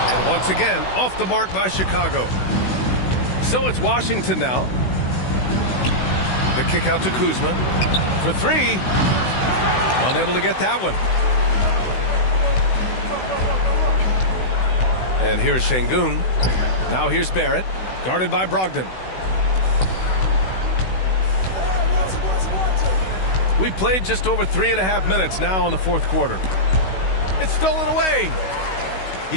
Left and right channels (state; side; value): late; right; 16 ms